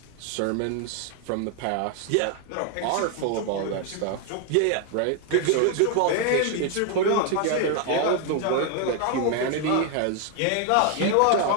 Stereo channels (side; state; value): both; different; correlation 0.00